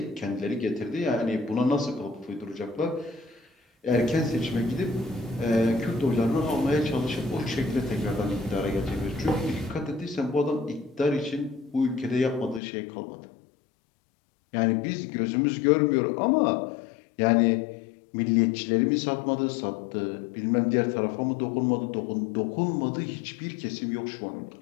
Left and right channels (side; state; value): right; drops out; at 12.6 s